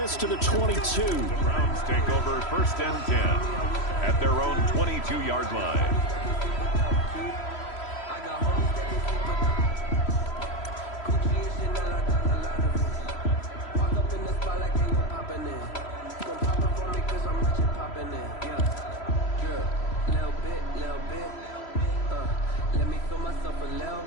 to the 22. The Browns take over 1st and 10 at their own 22-yard line.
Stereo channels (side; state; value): right; late; 3.0 ms